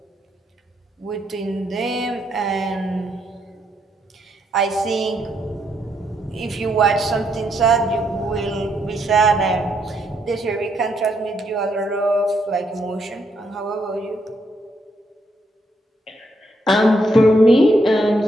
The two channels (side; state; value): both; normal; correlation 0.76